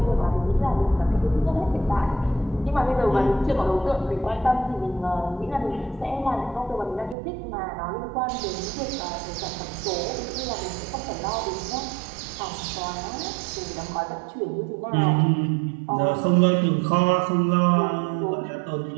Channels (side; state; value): left; drops out; at 7.2 s